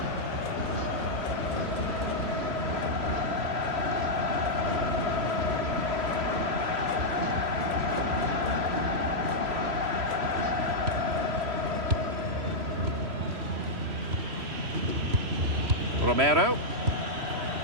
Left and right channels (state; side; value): late; left; 3.0 ms